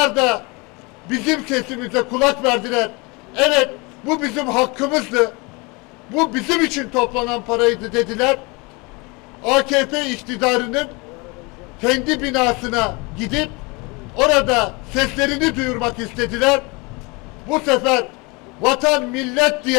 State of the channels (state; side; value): quieter; right; 27.6 dB